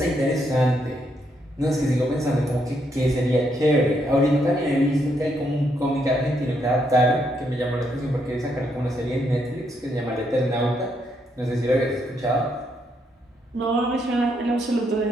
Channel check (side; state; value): both; normal; correlation 0.76